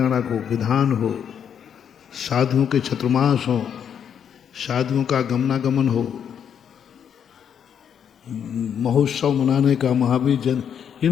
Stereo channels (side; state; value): right; quieter; 8.2 dB